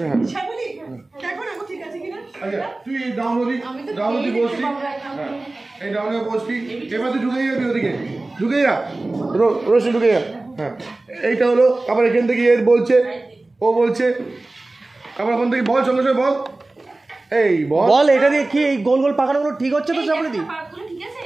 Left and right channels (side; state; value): left; quieter; 3.0 dB